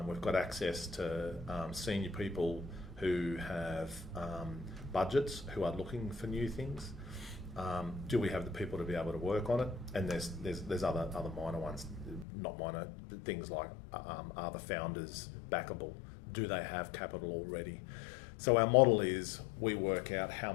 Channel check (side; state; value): right; drops out; at 12.2 s